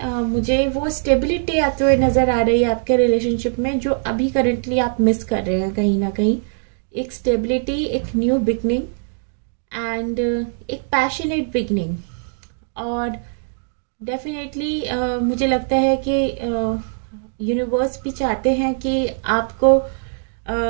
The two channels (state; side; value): silent; left; digital silence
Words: मुझे वो स्टेबिलिटी आते हुए नज़र आ रही है आपके रिलेशनशिप में, जो अभी करंटली आप मिस कर रहे हैं कहीं ना कहीं। एक स्टेबिलिटी, एक न्यू बिगनिंग, एंड एक पैशनेट बिगनिंग। और डेफिनेटली मुझे लगता है कि यूनिवर्स भी चाहते हैं कि आपको